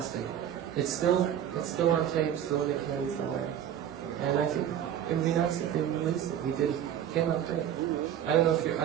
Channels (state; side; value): quieter; left; 10.1 dB